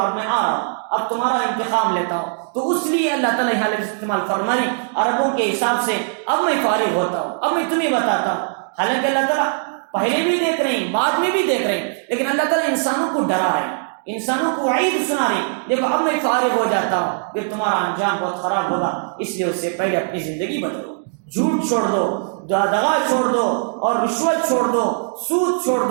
میں آ رہا ہوں، اب تمہارا انتقام لیتا ہوں، تو اس لیے اللہ تعالیٰ یہاں لفظ استعمال فرمائی عربوں کے حساب سے، اب میں فارغ ہوتا ہوں، اب میں تمہیں بتاتا ہوں۔ حالانکہ اللہ تعالیٰ پہلے بھی دیکھ رہے ہیں، بعد میں بھی دیکھ رہے ہیں، لیکن اللہ تعالیٰ انسانوں کو ڈرا رہے ہیں، انسانوں کو وعید سنا رہے ہیں، دیکھو اب میں فارغ ہو جاتا ہوں، پھر تمہارا انجام بہت خراب ہوگا، اس لیے اس سے پہلے اپنی زندگی بدلو، جھوٹ چھوڑ دو، دغا چھوڑ دو، اور رشوت چھوڑ دو، سود چھوڑ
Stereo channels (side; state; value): left; silent; digital silence